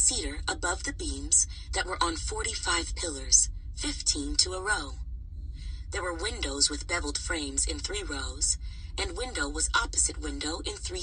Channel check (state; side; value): identical; both; correlation 1.00